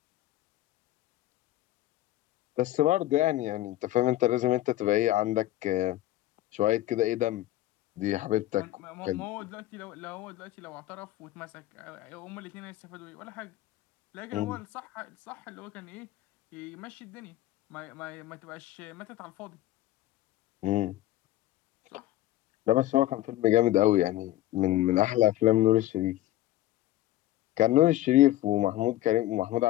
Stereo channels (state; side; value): quieter; right; 15.0 dB